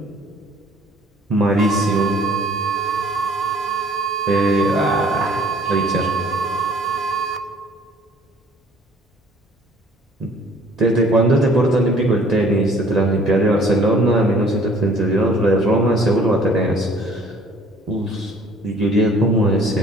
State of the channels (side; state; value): both; normal; correlation 0.55